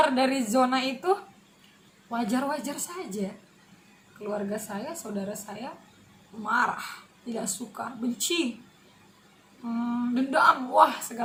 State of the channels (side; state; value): both; identical; correlation 1.00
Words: dari zona itu, wajar-wajar saja keluarga saya, saudara saya marah, tidak suka, benci, dendam,